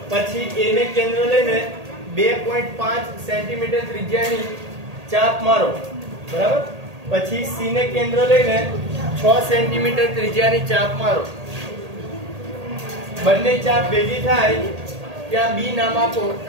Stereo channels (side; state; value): left; late; 1.8 ms